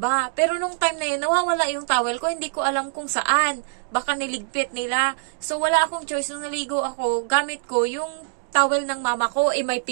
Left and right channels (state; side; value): silent; left; digital silence